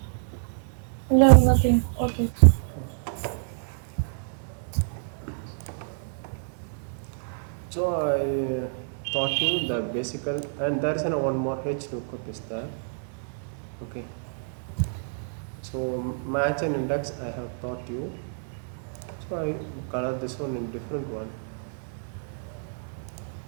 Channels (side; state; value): left; silent; digital silence